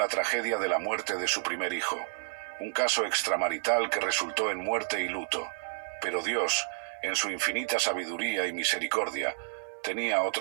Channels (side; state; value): left; silent; digital silence